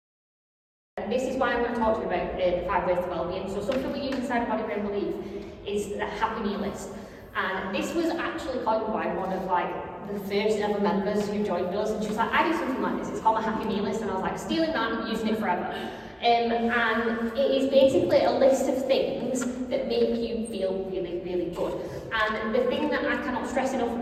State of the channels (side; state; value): both; identical; correlation 1.00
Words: This is why I'm going to talk to you about the 5 ways to well-being. So something we use inside of Body Brain Belief is the happy meal list. And this was actually coined by one of like the first ever members who joined us, and she was like, I do something like this, it's called a happy meal list, and I was like, stealing that and using it forever. and it is basically a list of things that make you feel really, really good. And the thing that I cannot stress enough